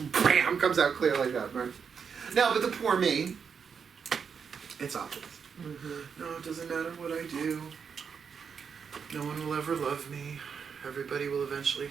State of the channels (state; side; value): quieter; left; 6.4 dB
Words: bam comes out clear like that, right? Now, but the poor me, it's obvious. Mm-hmm. No, it doesn't matter what I do. No one will ever love me. Everybody will eventually